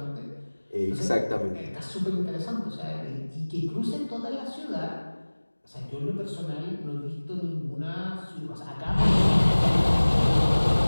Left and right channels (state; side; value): inverted; both; correlation -1.00